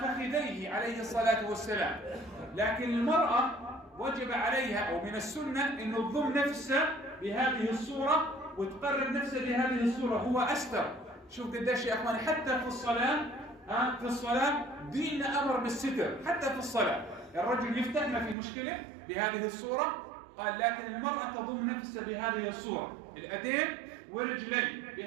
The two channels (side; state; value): left; drops out; at 18.4 s